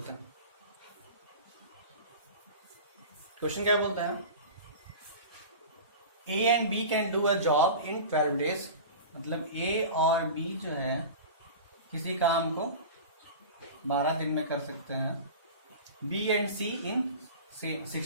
हैं। क्वेश्चन क्या बोलता है, A and B can do a job in 12 days। मतलब ए और बी जो है किसी काम को 12 दिन में कर सकते हैं। B and C in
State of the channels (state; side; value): inverted; both; correlation -0.33